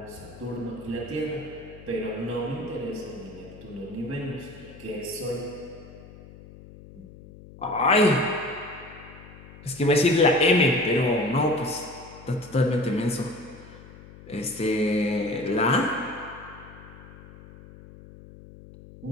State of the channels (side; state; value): left; noise; hum, 19 dB below the sound